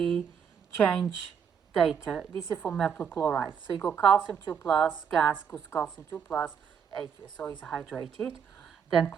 change data. This is for metal chloride. So you go calcium 2 plus, gas goes calcium 2 plus, aqueous, so it's hydrated. Then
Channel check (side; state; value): left; quieter; 7.2 dB